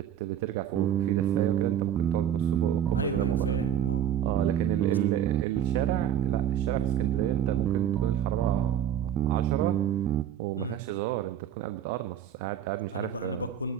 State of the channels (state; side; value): quieter; left; 10.0 dB